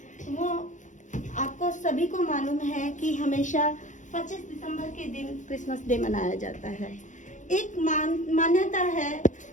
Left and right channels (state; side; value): late; right; 0.36 ms